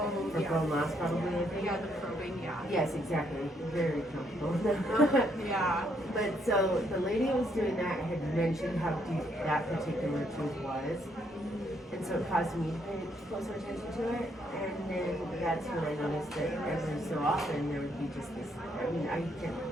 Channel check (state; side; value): normal; both; correlation 0.73